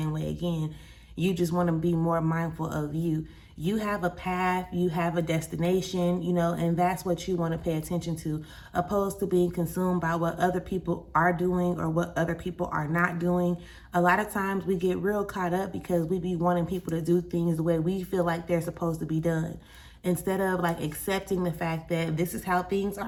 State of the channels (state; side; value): identical; both; correlation 1.00